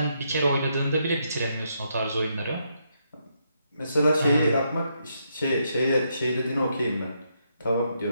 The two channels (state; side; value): inverted; both; correlation -0.78